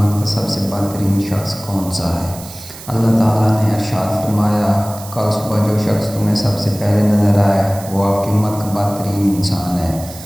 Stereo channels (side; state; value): right; noise; hiss, 15 dB below the sound